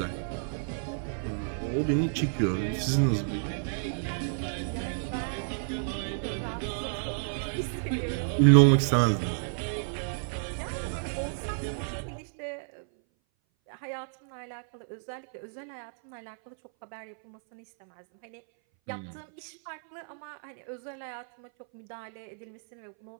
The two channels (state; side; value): silent; left; 57 dB below the other